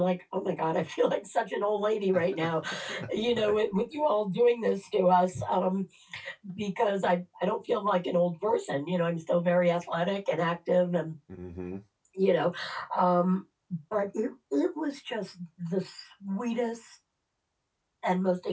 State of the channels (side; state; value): both; identical; correlation 1.00